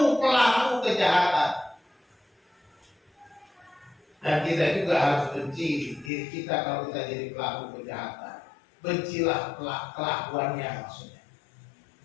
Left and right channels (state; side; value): drops out; right; at 6.1 s